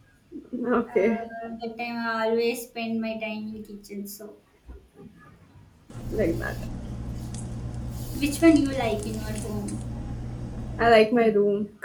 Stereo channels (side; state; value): both; identical; correlation 1.00